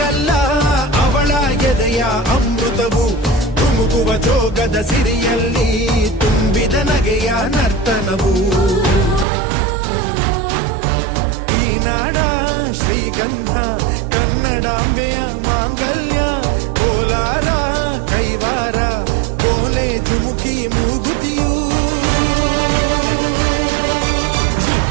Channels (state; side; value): drops out; left; at 9.2 s